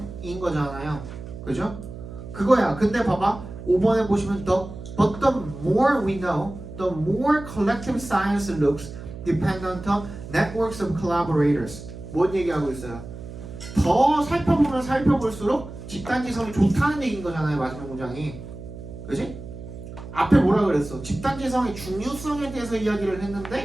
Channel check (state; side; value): noise; right; hum, 12 dB below the sound